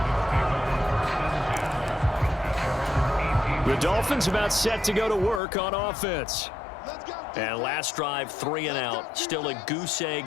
The Dolphins about set to go to work on offense. And last drive, 3 and out. Still a goose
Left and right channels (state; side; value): drops out; right; at 5.4 s